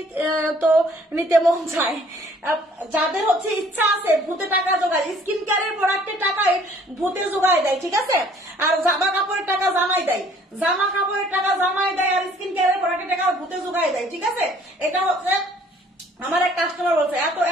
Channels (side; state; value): both; normal; correlation 0.57